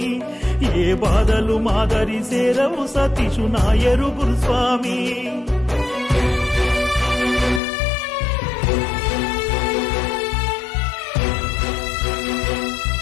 ఏ బాధలు మాదరి చేరవు సతీషు నాయరు గురుస్వామి.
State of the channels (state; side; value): drops out; right; at 7.6 s